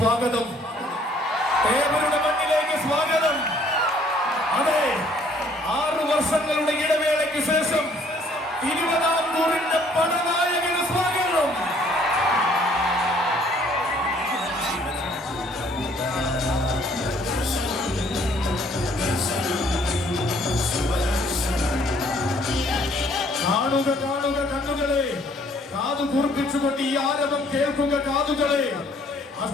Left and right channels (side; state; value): both; normal; correlation 0.61